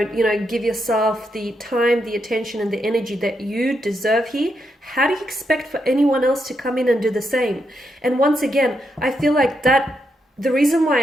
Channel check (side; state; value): both; normal; correlation 0.82